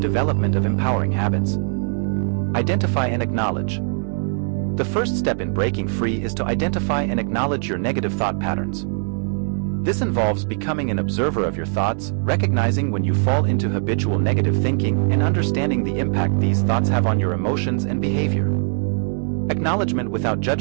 of empowering habits. Identify and acknowledge. The first step in breaking free is to identify and acknowledge your negative thought patterns. This involves becoming an observer of your thoughts, recognizing when you fall into habitual negative thinking, and understanding the impact these thoughts have on your emotions and behavior. Acknowledgement without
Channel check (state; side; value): silent; left; 56 dB below the other